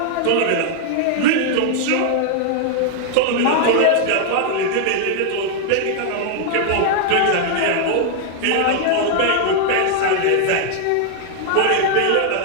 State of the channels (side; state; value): both; different; correlation 0.00